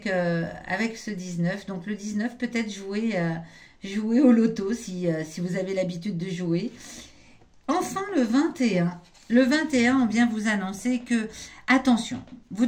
ce 19. Donc le 19, peut-être jouer au loto si vous avez l'habitude de jouer. Enfin, le 21. Le 21, on vient vous annoncer que, attention, vous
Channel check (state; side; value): identical; both; correlation 1.00